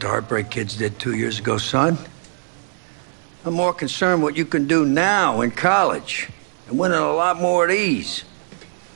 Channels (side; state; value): left; silent; 65 dB below the other